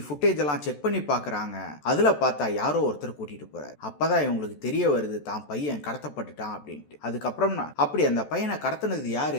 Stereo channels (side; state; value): right; late; 14 ms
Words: ஃபுட்டேஜ் எல்லாம் செக் பண்ணி பாக்குறாங்க. அதுல பார்த்தா யாரோ ஒருத்தர் கூட்டிட்டு போறாரு. அப்பதான் இவங்களுக்கு தெரிய வருது தான் பையன் கடத்தப்பட்டுட்டான் அப்படின்ட்டு. அதுக்கப்புறம் அப்படி அந்த பையனை கடத்தினது